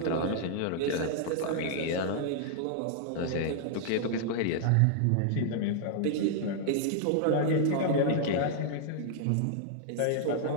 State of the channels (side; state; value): both; different; correlation 0.00